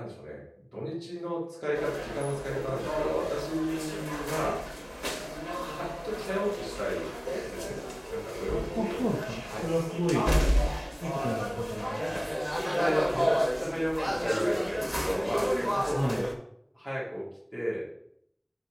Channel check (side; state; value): both; identical; correlation 1.00